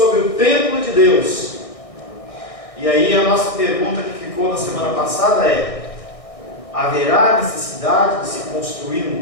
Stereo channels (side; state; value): right; late; 1.6 ms